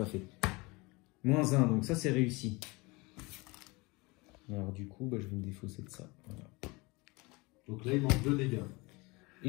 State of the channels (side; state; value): right; quieter; 25.0 dB